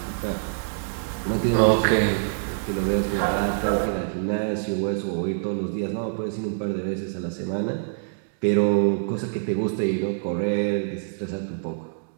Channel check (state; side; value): silent; left; digital silence